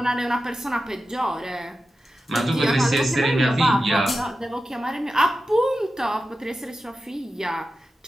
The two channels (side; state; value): both; normal; correlation 0.92